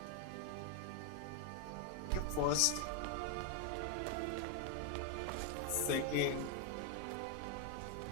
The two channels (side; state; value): both; different; correlation 0.01